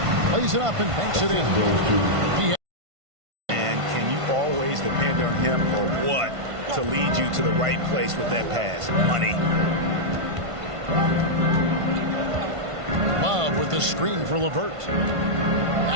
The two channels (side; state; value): left; late; 1.5 ms